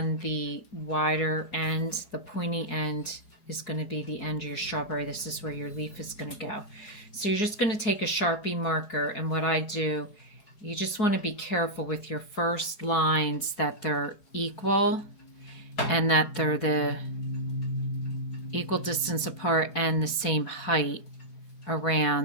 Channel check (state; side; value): late; right; 4.8 ms